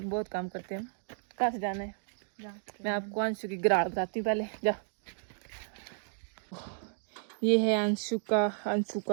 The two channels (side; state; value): left; silent; digital silence